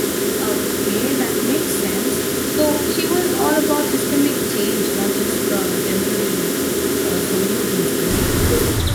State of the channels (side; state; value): both; identical; correlation 1.00